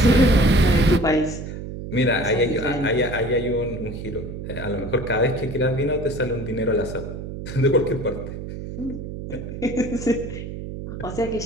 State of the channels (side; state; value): right; noise; hum, 8 dB below the sound